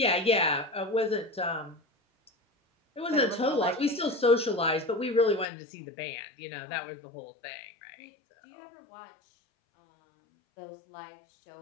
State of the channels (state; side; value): drops out; right; at 5.5 s